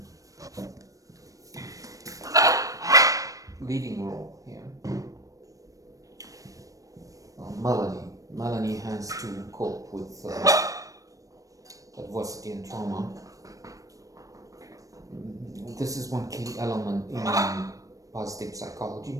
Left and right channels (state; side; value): late; left; 0.16 ms